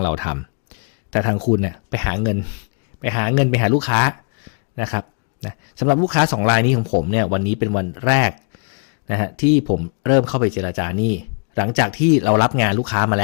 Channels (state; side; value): quieter; right; 36.0 dB